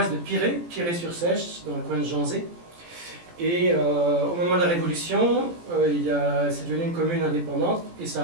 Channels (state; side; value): late; left; 17 ms